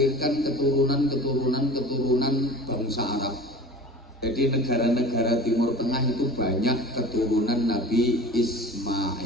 keturunan bangsa Arab. Jadi negara-negara Timur Tengah itu banyak keturunan Nabi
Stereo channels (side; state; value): both; normal; correlation 0.38